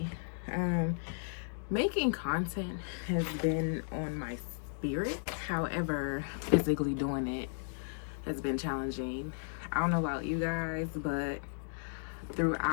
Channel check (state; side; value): silent; right; digital silence